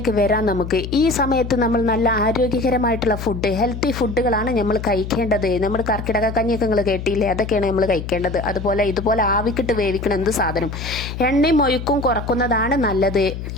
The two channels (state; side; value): noise; left; hum, 7 dB below the sound